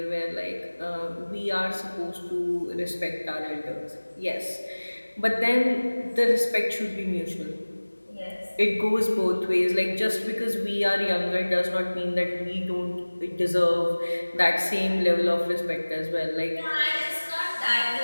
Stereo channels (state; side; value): inverted; both; correlation -1.00